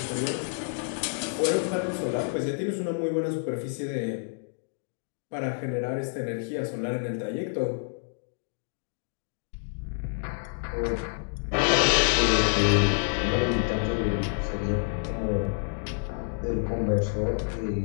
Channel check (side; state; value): right; silent; digital silence